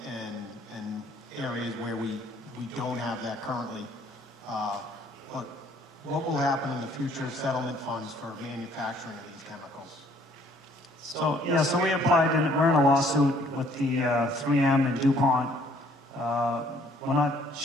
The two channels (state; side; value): normal; both; correlation 0.61